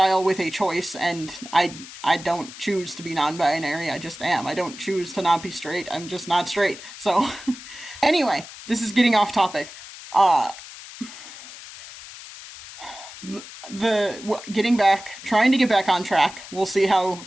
with a choice, and I don't choose to be non-binary. I just am. I don't choose to not be straight. I'm just not straight. So, anyway, this is getting off topic. Trying to get back on track. We'll see how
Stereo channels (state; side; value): noise; left; hiss, 15 dB below the sound